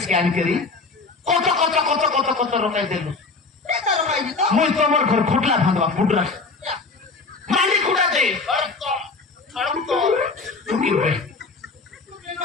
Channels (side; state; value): right; quieter; 4.0 dB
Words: জ্ঞান করি কত কত কত কত কত রকাই দেলুস eta ro kai dito মই তোমার ঘর খুটলা ভাঙবা ফুটরা ya মালি কুড়া দে ঢুকি বে